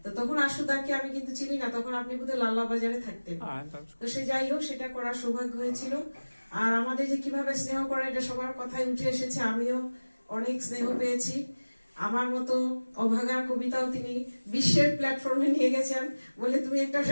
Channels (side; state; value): both; inverted; correlation -1.00